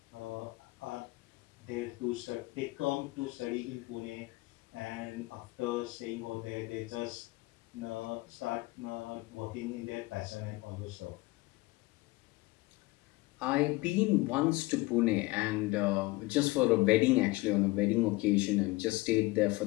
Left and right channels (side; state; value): right; quieter; 22.1 dB